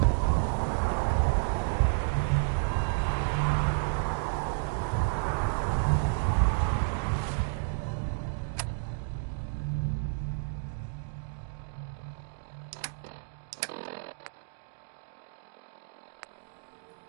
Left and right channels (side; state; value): left; silent; digital silence